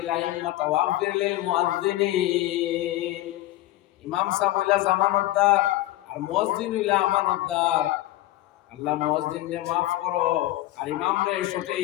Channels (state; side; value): quieter; right; 16.0 dB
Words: আইম্মাত ওয়া আগফির লিল মুআদ্দিনিন ইমাম সাহেব হইলা জামানতদার আর মুয়াজ্জিন হইলা আমানতদার আল্লাহ মুয়াজ্জিনকে maaf করো আর ইমামরে